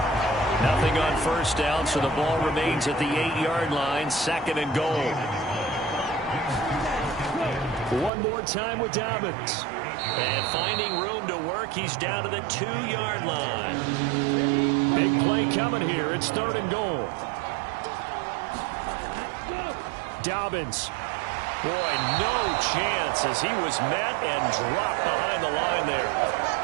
Nothing on 1st down, so the ball remains at the 8-yard line, 2nd and goal. One more time with Dobbins. And finding room to work, he's down to the 2-yard line. Big play coming here. It's 3rd and goal. Dobbins. Boy, no chance as he was met and dropped behind the line there.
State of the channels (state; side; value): drops out; left; at 8.1 s